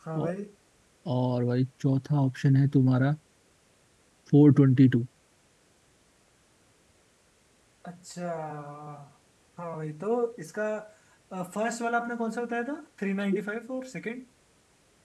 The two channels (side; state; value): both; identical; correlation 1.00